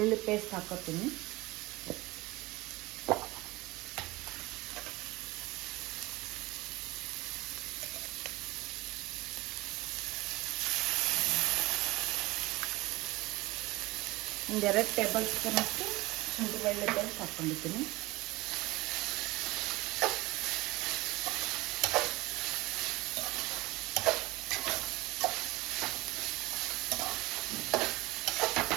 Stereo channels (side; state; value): left; quieter; 20.9 dB